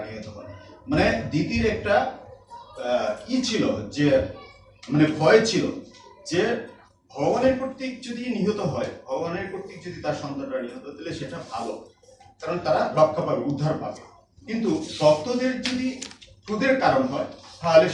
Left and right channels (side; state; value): both; identical; correlation 1.00